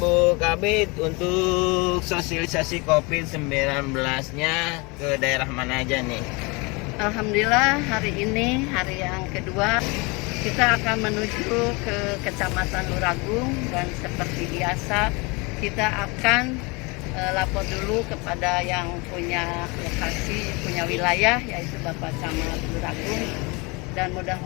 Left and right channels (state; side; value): quieter; right; 27.7 dB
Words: Bu Kabid untuk sosialisasi COVID-19-nya ke daerah mana aja nih? Alhamdulillah hari ini hari yang kedua kita akan menuju ke Kecamatan Luragung, dan seperti biasa kita akan lapor dulu kepada yang punya lokasi, punya wilayah, yaitu Bapak Camat Luragung, dan